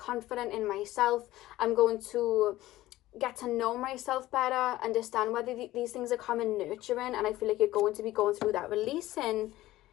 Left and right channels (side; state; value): right; quieter; 16.1 dB